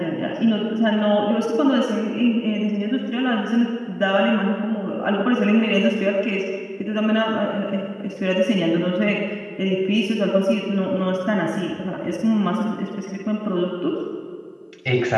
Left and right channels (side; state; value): both; identical; correlation 1.00